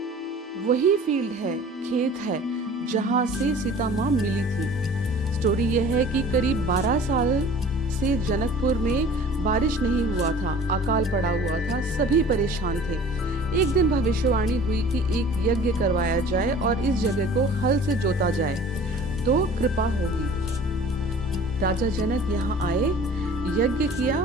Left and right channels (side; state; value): both; normal; correlation 0.46